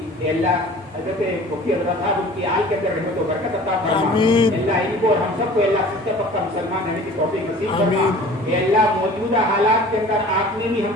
اے اللہ حضرت مفتی حضرت صاحب ان کی آل کے اندر رحمت و برکت عطا فرما۔ اللہ ان کو اور ہم سب کو اللہ سچا پکا مسلمان رہنے کی توفیق نصیب فرما۔ اے اللہ موجودہ حالات کے اندر آپ نے بھی ہم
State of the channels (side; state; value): both; normal; correlation 0.45